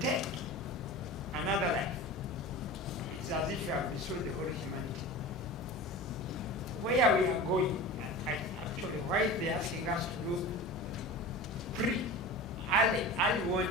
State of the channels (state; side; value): normal; both; correlation 0.33